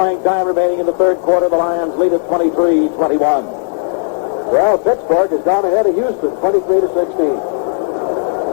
time remaining in the third quarter. The Lions lead at 23-21. Well, Pittsburgh has gone ahead of Houston, 23-16.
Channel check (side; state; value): right; silent; digital silence